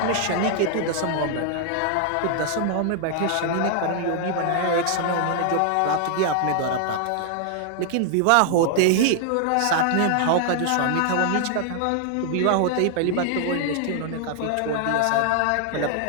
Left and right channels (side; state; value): both; different; correlation 0.00